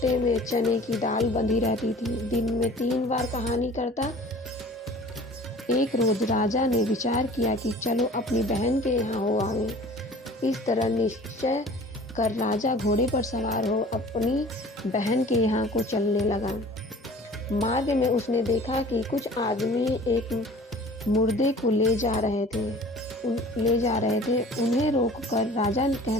में चने की दाल बंधी रहती थी। दिन में 3 बार कहानी करता। एक रोज राजा ने विचार किया कि चलो अपनी बहन के यहाँ हो आवे। इस तरह निश्चय कर राजा घोड़े पर सवार हो अपनी बहन के यहाँ को चलने लगा। मार्ग में उसने देखा कि कुछ आदमी एक मुर्दे को ले जा रहे थे। उन्हें रोककर राजा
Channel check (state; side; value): normal; both; correlation 0.46